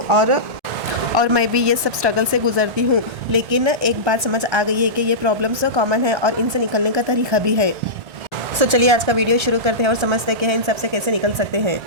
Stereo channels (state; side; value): late; left; 1.3 ms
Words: और मैं भी ये सब स्ट्रगल से गुजरती हूँ। लेकिन एक बात समझ आ गई है कि ये प्रॉब्लम्स कॉमन है और इनसे निकलने का तरीका भी है। चलिए आज का वीडियो शुरू करते हैं और समझते हैं कि इन सब से कैसे निकल सकते हैं।